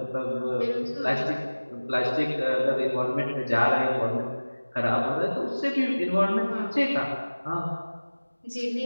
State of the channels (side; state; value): both; inverted; correlation -1.00